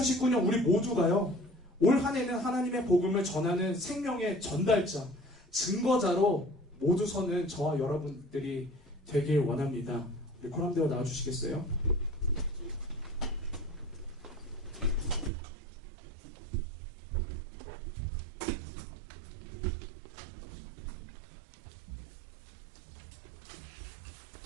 우리 모두가요, 올 한 해는 하나님의 복음을 전하는 생명의 전달자, 증거자로 모두 서는 저와 여러분들이 되길 원합니다. 우리 코람대로 나와주시겠어요?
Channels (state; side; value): drops out; left; at 15.3 s